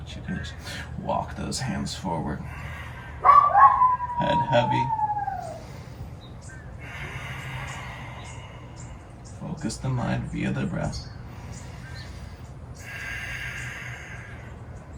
you can just walk those hands forward. Head heavy. Focus the mind via the breath.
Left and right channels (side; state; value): both; identical; correlation 1.00